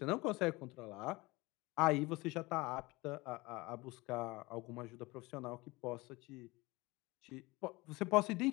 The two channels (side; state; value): right; quieter; 22.7 dB